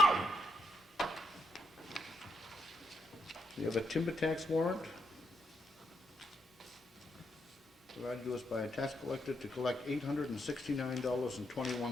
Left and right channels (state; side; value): normal; both; correlation 0.79